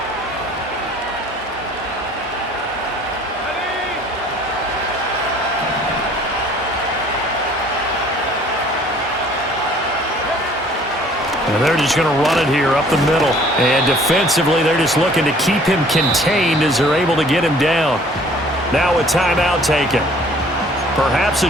And they're just going to run it here up the middle. And defensively, they're just looking to keep him contained as they're able to get him down. Now a timeout taken. Perhaps a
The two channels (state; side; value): normal; both; correlation 0.55